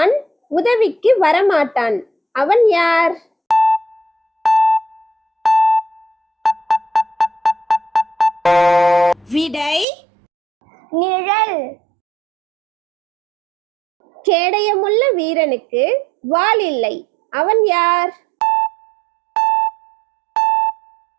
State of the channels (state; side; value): drops out; left; at 9.9 s